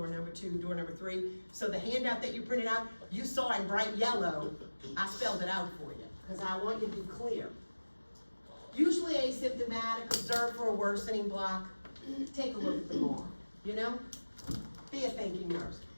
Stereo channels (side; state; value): both; inverted; correlation -1.00